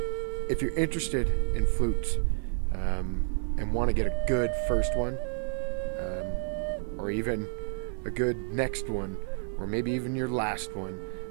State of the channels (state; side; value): silent; left; 57 dB below the other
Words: if you're interested in flutes and want to get a good first one, or even a good next one, or maybe even your last one,